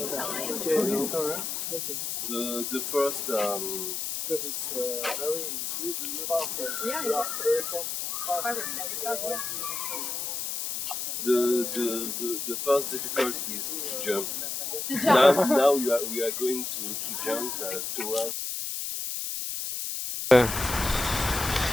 time. The first Because it's very the first difficulty is to jump. Now we are going to jump towards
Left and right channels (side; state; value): left; noise; hiss, 3 dB below the sound